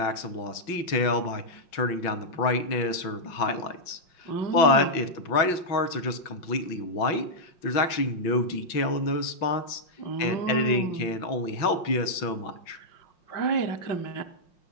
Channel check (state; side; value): late; right; 5.6 ms